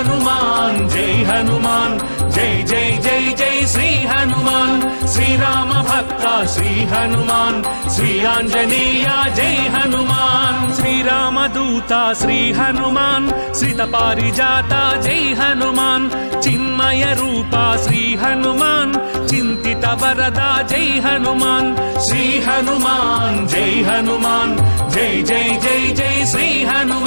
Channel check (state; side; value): inverted; both; correlation -1.00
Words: जय हनुमान जय जय जय जय श्री हनुमान श्री राम भक्त श्री हनुमान श्री आंजनेय जय हनुमान श्री रामदूता श्री हनुमान श्रित पारिजाता जय हनुमान चिन्मय रूपा श्री हनुमान चिंतित वरदा जय हनुमान श्री हनुमान जय हनुमान जय जय जय जय श्री